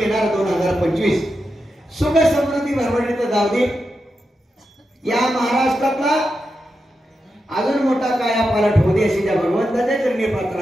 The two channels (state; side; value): normal; both; correlation 0.88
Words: 2025 सुख समृद्धी भरभराटीत जाऊ दे. या महाराष्ट्रातला अजून मोठा काया पालट होऊ दे अशी त्या भगवंताच्या चरणी